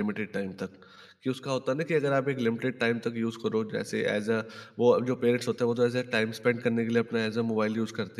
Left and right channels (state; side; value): identical; both; correlation 1.00